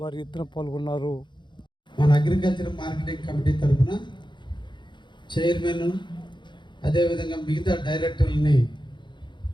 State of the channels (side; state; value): right; late; 0.22 ms